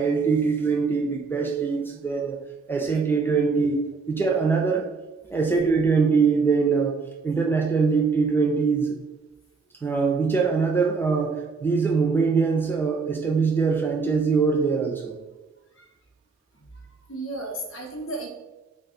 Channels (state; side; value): quieter; left; 4.6 dB